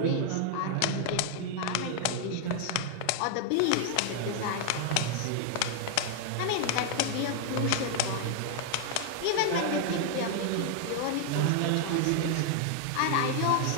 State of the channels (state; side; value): different; both; correlation 0.00